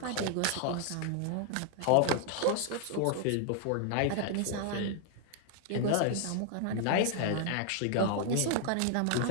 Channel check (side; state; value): both; different; correlation 0.00